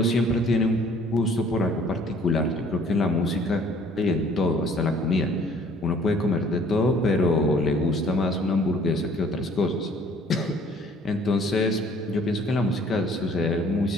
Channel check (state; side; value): normal; both; correlation 0.56